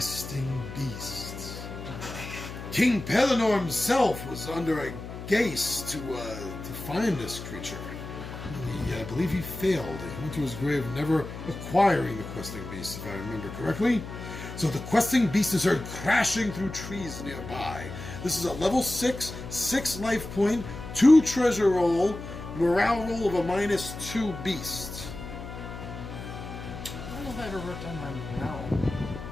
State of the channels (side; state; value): left; noise; hum, 10 dB below the sound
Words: Beast. King Pellinor himself was under a gaze to find this creature. I believe he failed. He went to his grave never acquiring the Questing Beast, if I remember correctly. So the Questing Beast is heard crashing through trees nearby. This is a level 6, 6 life point, 2 treasure roll, morale roll of a -2 beast. I don't know if I ever wrote down my morale.